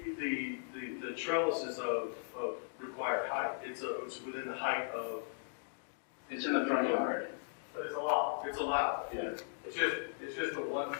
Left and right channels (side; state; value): right; silent; digital silence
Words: the trellises of required height, it's within the height of. It's in the front yard. But it's allowed. It's allowed. Yeah. It's just the one